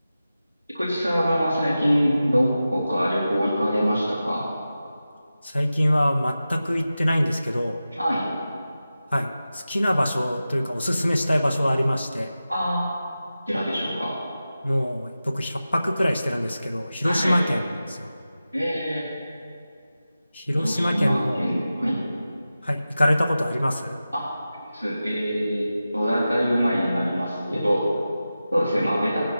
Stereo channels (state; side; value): inverted; both; correlation -0.94